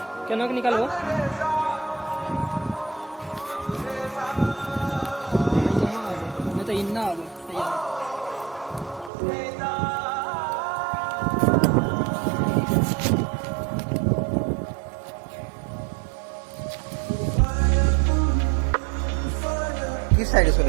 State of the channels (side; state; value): left; drops out; at 9.1 s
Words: क्या नक निकालो मैं तो इन्ना आ गया किस साइड से